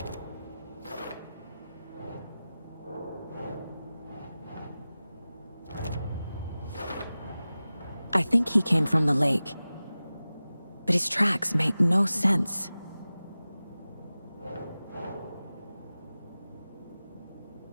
think he came from the lake. But his tracks make no sense.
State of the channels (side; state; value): both; inverted; correlation -0.96